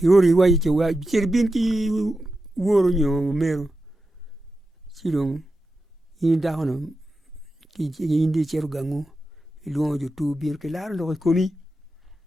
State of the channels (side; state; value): both; normal; correlation 0.90